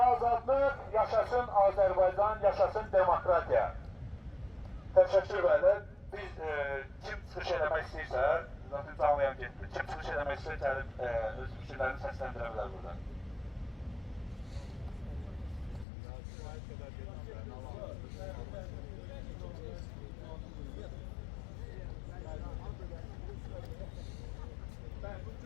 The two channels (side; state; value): right; drops out; at 15.9 s